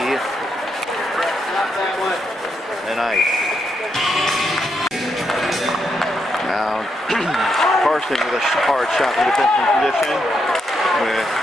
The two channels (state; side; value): normal; both; correlation 0.80